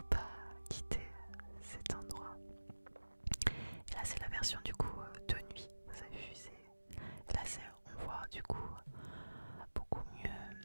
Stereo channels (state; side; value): inverted; both; correlation -1.00